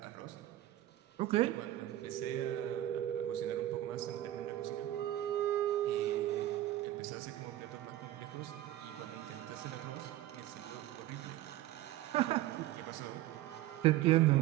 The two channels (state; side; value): quieter; left; 14.5 dB